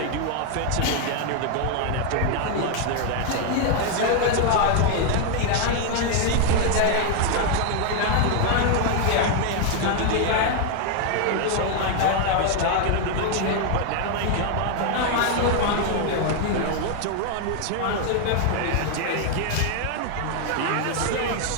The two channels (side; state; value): both; different; correlation 0.00